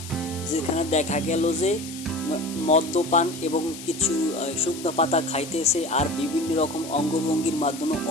যেখানে দেখা গেল যে মদ্যপান এবং কিছু শুকনো পাতা খাইতেছে আর বিভিন্ন রকম অঙ্গভঙ্গির মাধ্যমে,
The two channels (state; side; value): noise; left; hiss, 13 dB below the sound